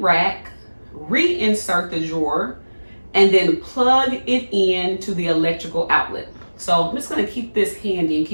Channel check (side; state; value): both; inverted; correlation -1.00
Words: rack, reinsert the drawer, and then plug it in to the electrical outlet. So I'm just going to keep this handy and